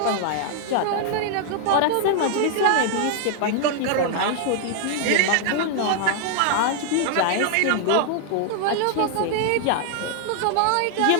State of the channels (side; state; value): both; different; correlation 0.00